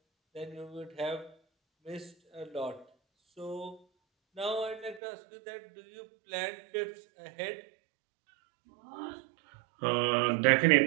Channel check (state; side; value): drops out; left; at 5.0 s